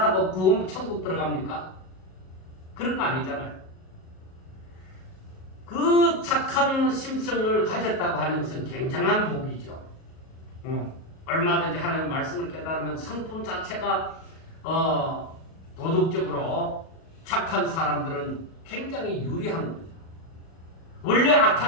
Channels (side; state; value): right; late; 37 ms